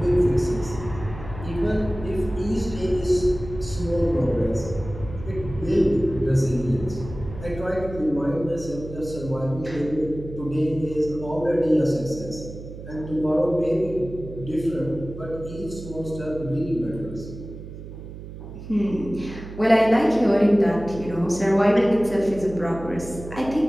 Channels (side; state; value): right; noise; hum, 12 dB below the sound